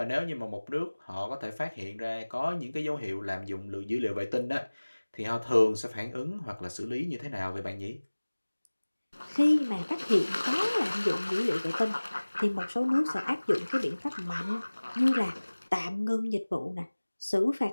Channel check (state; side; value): inverted; both; correlation -1.00